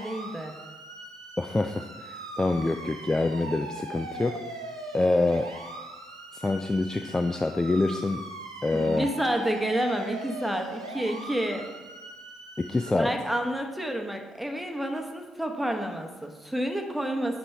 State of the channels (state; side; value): normal; both; correlation 0.89